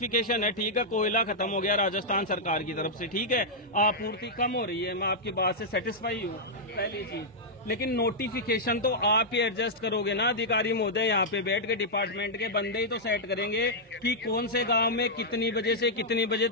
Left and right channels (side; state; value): both; normal; correlation -0.07